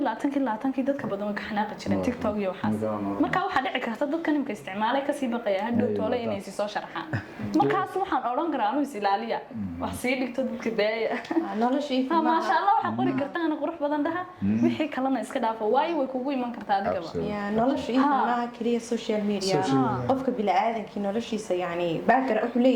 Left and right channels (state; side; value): identical; both; correlation 1.00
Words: 20 dadka badan ka xanaaqi jireen TikTok iyo waxaas marka waxa dhici karta dadkan imka isticmaalay ka sii baqaya hadhow toole inay si soo sharxaan markaas waxaan oran karaa anu is ilaaliya wax sii dhigto dadka daaya noloshii ma sha Allah waxa qori kartaan qurux badan dhaha wixii kalena iska dhaafo way kugu iman kartaa adigaba ya noloshii ma kaliya social media qofka bilaadanki noloshiisa yani baakar wuxuu